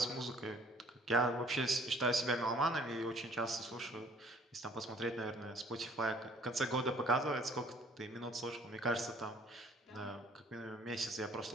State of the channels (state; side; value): normal; both; correlation 0.56